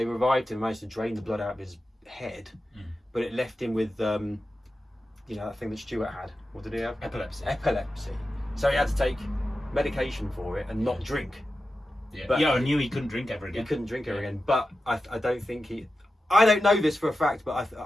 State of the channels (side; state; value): both; normal; correlation 0.92